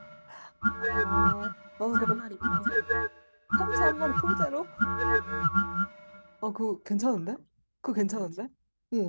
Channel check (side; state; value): both; inverted; correlation -1.00